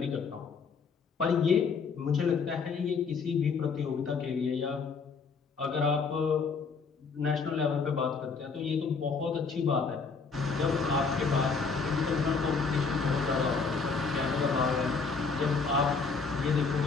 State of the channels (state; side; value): quieter; right; 5.0 dB